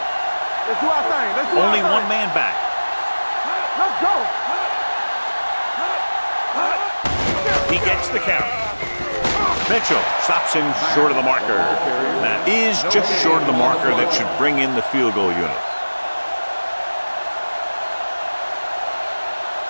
Let's do our thing. Let's do Only our one thing. man back. Let's go. He gets the count. Mitchell stops him short of the marker. That is just short of the marker that should bring in the field goal unit.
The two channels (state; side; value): inverted; both; correlation -1.00